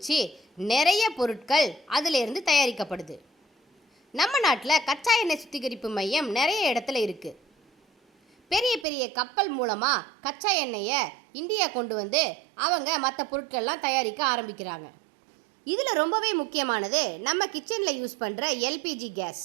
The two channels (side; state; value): left; drops out; at 8.8 s